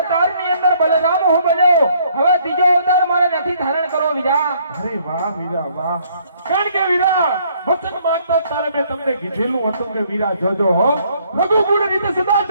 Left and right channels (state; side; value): inverted; both; correlation -0.65